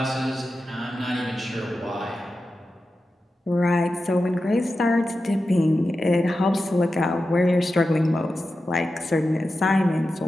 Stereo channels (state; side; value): normal; both; correlation 0.92